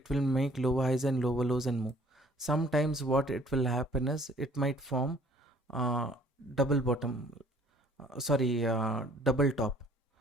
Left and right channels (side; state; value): both; normal; correlation 0.57